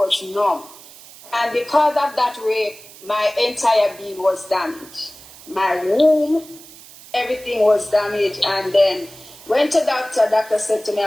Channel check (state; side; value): noise; right; hiss, 20 dB below the sound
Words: numb. And because of that rape, my entire being was damaged. My womb, everything was damaged. And then went to doctor. Doctor said to me I